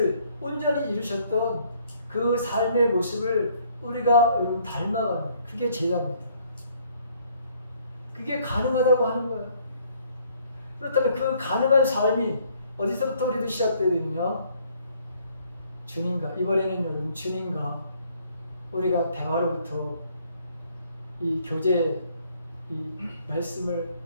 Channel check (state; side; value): inverted; both; correlation -0.64